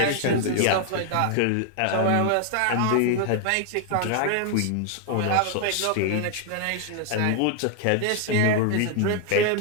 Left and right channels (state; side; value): different; both; correlation 0.00